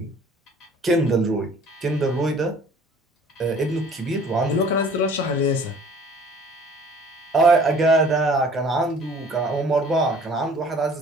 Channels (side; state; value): both; normal; correlation 0.51